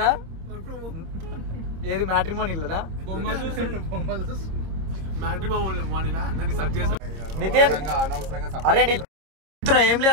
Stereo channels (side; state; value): left; late; 26 ms